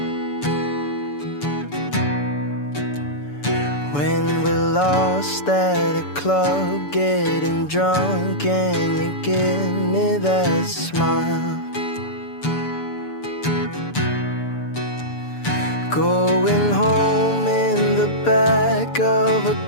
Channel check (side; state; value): right; late; 6.9 ms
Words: When we're lost at a club, getting drunk and you give me that smile. Going home in the back of a